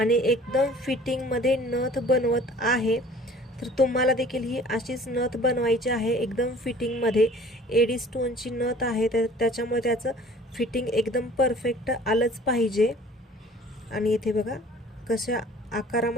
एकदम फिटिंगमध्ये नथ बनवत आहे. तर तुम्हाला देखील ही अशीच नथ बनवायची आहे एकदम फिटिंगमध्ये. एडी स्टोनची नथ आहे तर त्याच्यामुळे त्याचं फिटिंग एकदम परफेक्ट आलंच पाहिजे. आणि इथे बघा कशा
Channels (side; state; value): both; normal; correlation 0.49